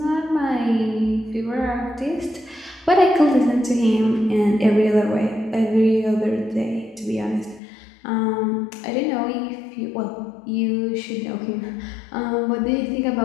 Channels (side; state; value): right; drops out; at 7.6 s